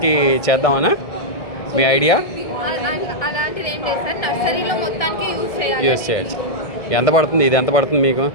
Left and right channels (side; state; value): right; late; 1.5 ms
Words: కి చేద్దామనా మీ ఐడియా? అలాంటిది ఏం లేదు సార్, నర్సరీలో మొత్తానికి యూస్ చేయొచ్చు. ఎంత పడుతుంది ఇది, ఎంత పడుతుంది మీకు?